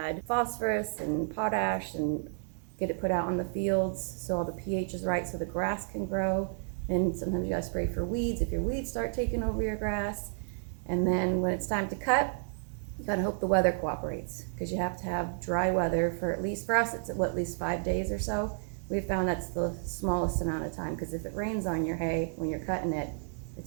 phosphorus and potash and get it put out on the fields so all the pH is right so the grass can grow. And sometimes you gotta spray for weeds if your weeds start taking over your grass. And then when it's time to cut, you gotta hope the weather cooperates because you have to have dry weather for us, it's at least 5 days or so. We've found that's the smallest amount of time because if it rains on your hay when you're cutting it,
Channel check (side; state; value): left; silent; digital silence